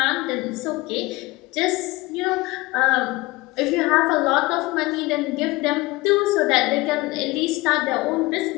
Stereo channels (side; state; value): right; quieter; 21.6 dB